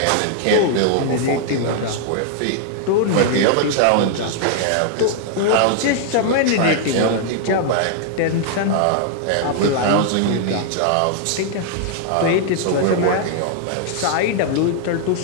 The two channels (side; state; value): both; different; correlation -0.01